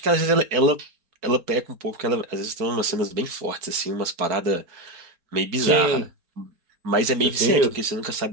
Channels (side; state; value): left; late; 4.6 ms